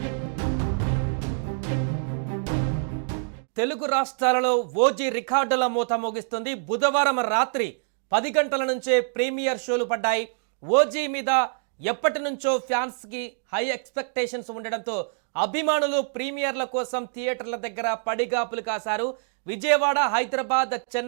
తెలుగు రాష్ట్రాలలో ఓజీ రికార్డుల మూత మోగిస్తుంది. బుధవారం రాత్రి 10 గంటల నుంచే ప్రీమియర్ షోలు పడ్డాయి. ఓజీ మీద ఎప్పటి నుంచో ఫ్యాన్స్కి హై ఎక్స్పెక్టేషన్స్ ఉండడంతో అభిమానులు ప్రీమియర్ల కోసం థియేటర్ల దగ్గర పడిగాపులు కాశారు. విజయవాడ, హైదరాబాద్,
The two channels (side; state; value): left; silent; digital silence